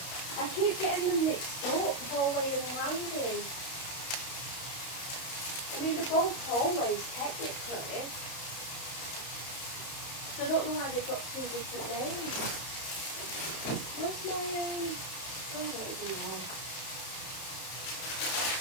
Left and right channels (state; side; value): late; right; 32 ms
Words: I keep getting them mixed up, hallway and landing. I mean, they're both hallways technically. So I don't know why they've got two different names. Where's my, I don't even know.